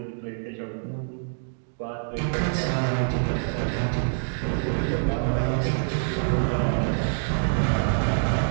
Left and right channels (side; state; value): left; silent; digital silence